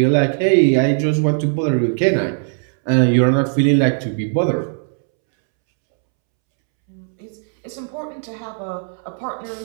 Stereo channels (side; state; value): left; silent; 67 dB below the other